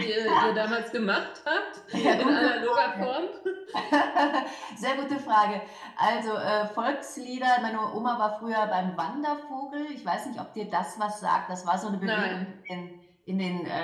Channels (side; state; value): both; identical; correlation 1.00